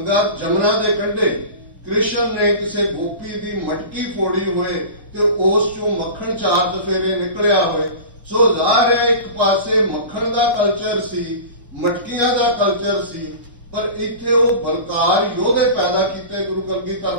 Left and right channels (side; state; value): both; inverted; correlation -0.34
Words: ਜਮਨਾ ਦੇ ਕੰਢੇ ਕ੍ਰਿਸ਼ਨ ਨੇ ਕਿਸੇ ਗੋਪੀ ਦੀ ਮਟਕੀ ਫੋੜੀ ਹੋਏ ਤੇ ਉਸ ਚੋਂ ਮੱਖਣ 4 ਚਫੇਰੇ ਨਿਕਲਿਆ ਹੋਏ। ਸੋ ਜ਼ਾਹਰ ਹੈ ਇੱਕ ਪਾਸੇ ਮੱਖਣ ਦਾ ਕਲਚਰ ਸੀ, ਮਟਕੀਆਂ ਦਾ ਕਲਚਰ ਸੀ, ਪਰ ਇੱਥੇ ਉਹ ਬਲਕਾਰ ਯੋਧੇ ਪੈਦਾ ਕੀਤੇ ਗੁਰੂ ਕਲਗੀਧਰ